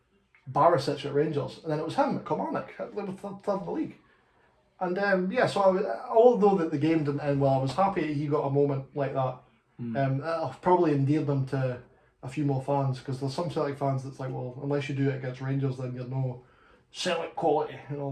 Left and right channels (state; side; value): identical; both; correlation 1.00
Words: Barisic at Rangers, and then it was him at Kilmarnock, with third in the league. And so although that the game didn't end well, I was happy he got a moment like that. It probably endeared them to a few more fans, because there's some Celtic fans that's like, well, unless you do it against Rangers, then you're no Celtic quality and all